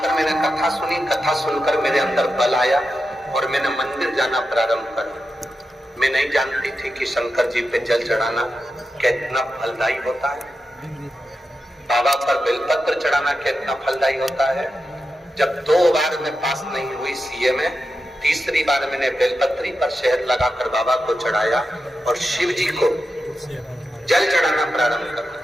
मैंने कथा सुनी, कथा सुनकर मेरे अंदर बल आया और मैंने मंदिर जाना प्रारंभ कर। मैं नहीं जानती थी कि शंकर जी पे जल चढ़ाना कितना फलदायी होता है, बाबा पर बेलपत्र चढ़ाना कितना फलदायी होता है। जब 2 बार मैं पास नहीं हुई सीए में, तीसरी बार मैंने बेलपत्री पर शहद लगाकर बाबा को चढ़ाया और शिव जी को जल चढ़ाना प्रारंभ कर।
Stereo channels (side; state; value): both; normal; correlation 0.89